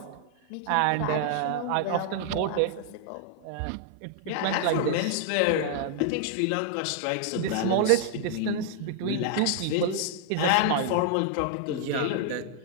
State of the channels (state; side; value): different; both; correlation 0.00